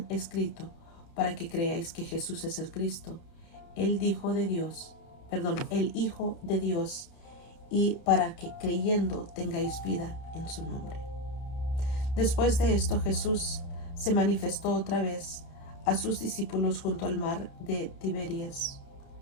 escrito para que creáis que Jesús es el Cristo, el Hijo de Dios, y para que creyendo tengáis vida en su nombre. Después de esto, Jesús se manifestó otra vez a sus discípulos junto al mar de Tiberias,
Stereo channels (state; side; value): late; right; 30 ms